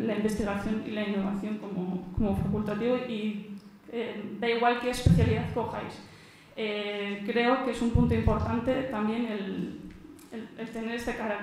investigación y la innovación como facultativo, y da igual qué especialidad cojáis. Creo que es un punto importante también el tener este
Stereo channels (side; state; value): both; identical; correlation 1.00